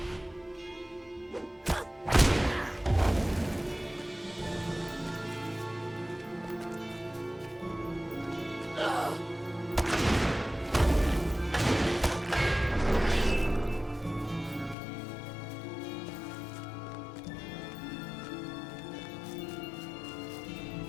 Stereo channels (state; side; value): drops out; right; at 14.8 s